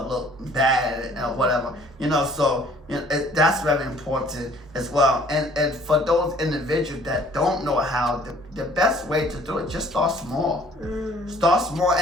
look bad or whatever. So that's very important as well. And for those individuals that don't know how, the best way to do it, just start small. Start small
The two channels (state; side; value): normal; both; correlation 0.56